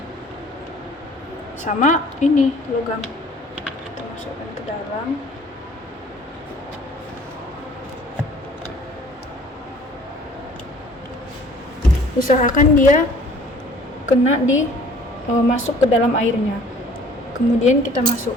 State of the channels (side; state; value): both; normal; correlation 0.53